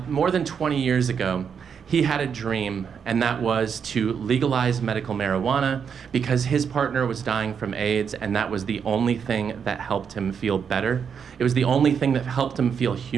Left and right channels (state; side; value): quieter; left; 7.0 dB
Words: more than 20 years ago, he had a dream, and that was to legalize medical marijuana because his partner was dying from AIDS, and that was the only thing that helped him feel better. It was the only thing that helped him feel